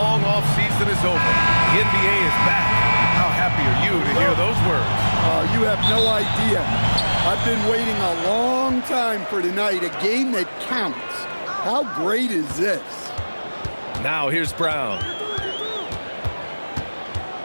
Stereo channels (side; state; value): both; inverted; correlation -1.00